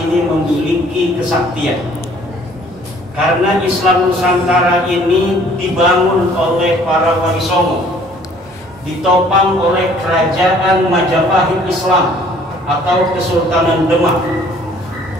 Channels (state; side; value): normal; both; correlation 0.57